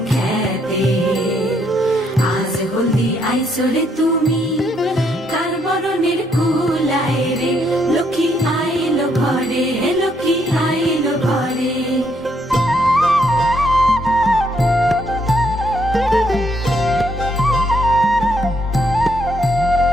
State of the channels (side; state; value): both; normal; correlation 0.72